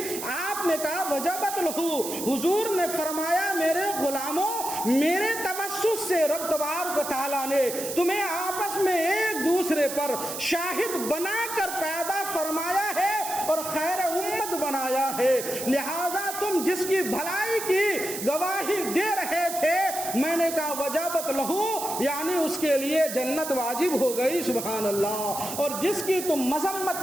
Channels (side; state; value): right; noise; hiss, 7 dB below the sound